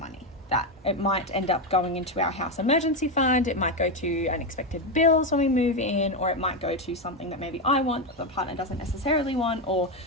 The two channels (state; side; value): normal; both; correlation 0.10